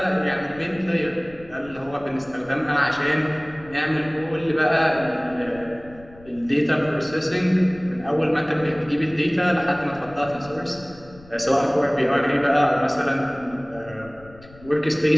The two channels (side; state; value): left; noise; rumble, 22 dB below the sound